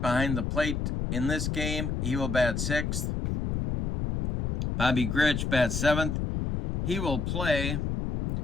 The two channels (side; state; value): left; noise; rumble, 1 dB below the sound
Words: behind the plate in this game. He will bat sixth. Bobby Grich bats seventh. He will play